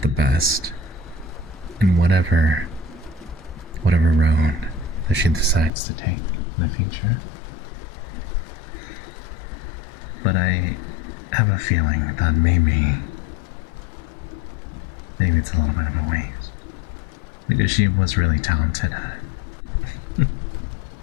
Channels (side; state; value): right; drops out; at 5.7 s